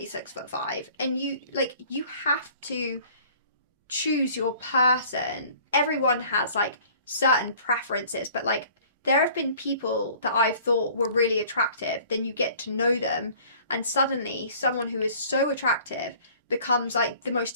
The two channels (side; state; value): both; inverted; correlation -0.51